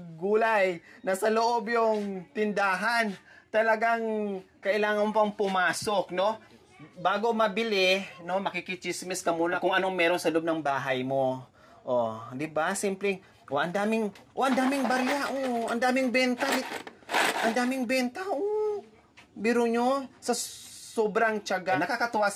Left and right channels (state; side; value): identical; both; correlation 1.00